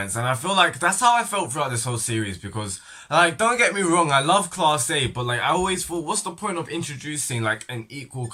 And I feel like that's how I felt throughout this whole series because like don't get me wrong, I love Class A, but like I always thought what's the point of introducing like an equal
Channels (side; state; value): both; identical; correlation 1.00